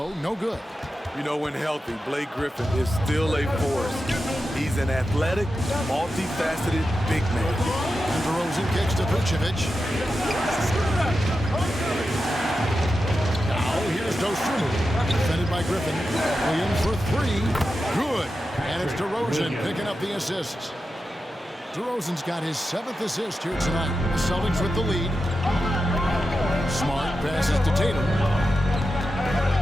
no good. You know, when healthy, Blake Griffin is still a force. He's an athletic, multifaceted big man. And DeRozan kicks to Vucevic. Now here's Dosunmu, defended by Griffin. Williams for 3, good. And it's DeRozan picking up the assists. DeRozan's got his 7th assist here tonight. The Celtics with the lead. Smart passes to Tatum.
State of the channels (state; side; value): normal; both; correlation 0.90